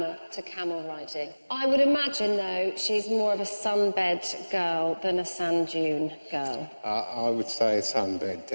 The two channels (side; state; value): both; inverted; correlation -1.00